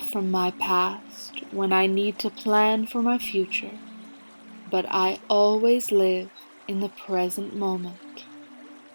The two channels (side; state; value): both; inverted; correlation -1.00